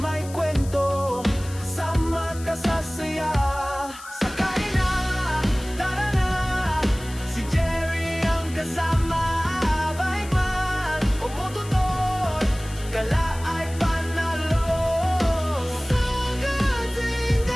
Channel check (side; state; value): left; noise; hiss, 17 dB below the sound